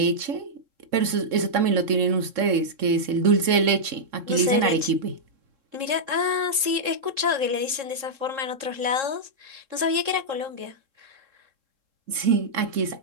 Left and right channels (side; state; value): left; late; 3.7 ms